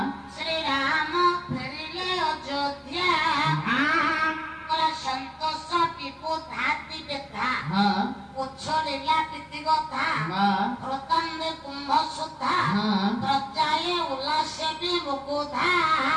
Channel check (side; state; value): both; identical; correlation 1.00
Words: ଶ୍ରୀରାମ ଫେରିଲେ ଅଯୋଧ୍ୟା ସନ୍ତୋଷ ଟିପୁ ଧାତି ବେଧା ଉଚ୍ଛଳିଲା ପ୍ରୀତି କଥା ହୃତାନ୍ଦେ କୁମ୍ଭ ସୁଧା ପ୍ରଜାଏ ଉଲ୍ଲାସେ ବି ମୁକୁଧା।